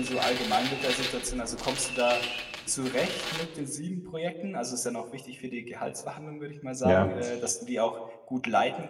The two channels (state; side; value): identical; both; correlation 1.00